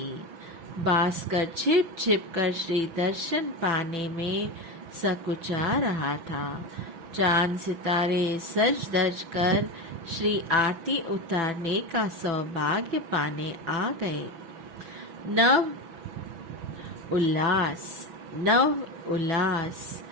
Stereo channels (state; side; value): late; left; 6.0 ms